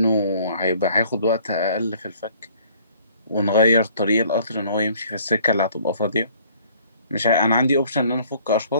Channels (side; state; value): both; inverted; correlation -0.58